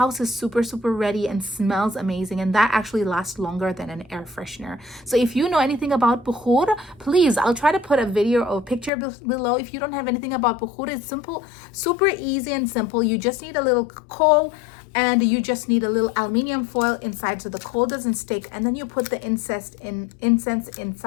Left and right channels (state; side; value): drops out; right; at 8.9 s